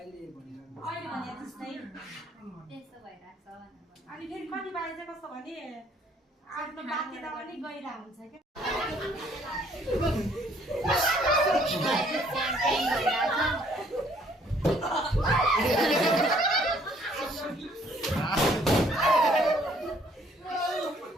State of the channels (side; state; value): both; normal; correlation 0.62